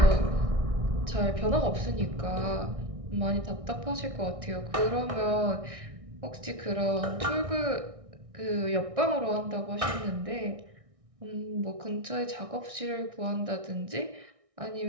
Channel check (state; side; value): late; left; 1.6 ms